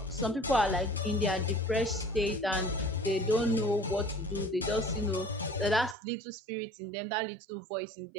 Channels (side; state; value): left; drops out; at 6.0 s